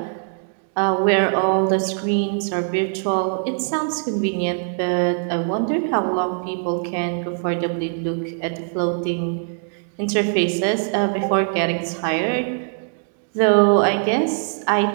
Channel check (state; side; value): silent; left; digital silence